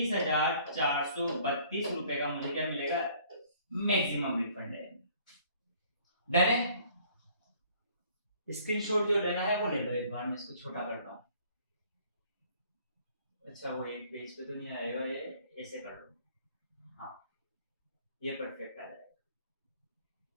रुपए का मुझे क्या मिलेगा? मैक्सिमम रिफंड है। डन है? स्क्रीनशॉट जो लेना है वो ले लो एक बार, मैं इसको छोटा करता हूं। अच्छा वो एक पेज पे तो नहीं आएगा, ये ऐसे कर लो, हाँ ये परफेक्ट आ जाएगा।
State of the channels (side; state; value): both; inverted; correlation -0.57